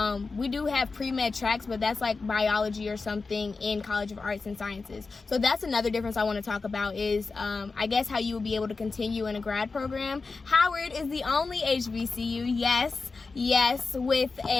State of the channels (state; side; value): quieter; right; 4.2 dB